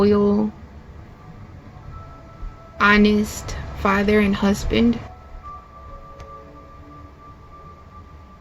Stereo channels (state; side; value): identical; both; correlation 1.00